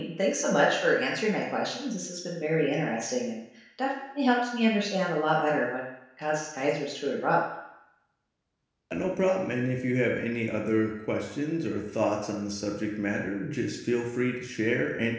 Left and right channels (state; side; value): identical; both; correlation 1.00